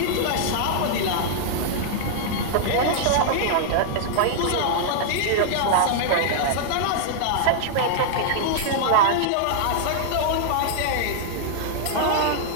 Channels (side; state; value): both; different; correlation -0.01